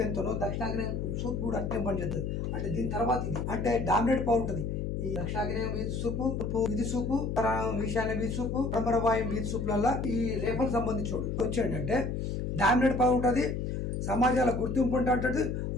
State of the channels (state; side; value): noise; left; hum, 2 dB below the sound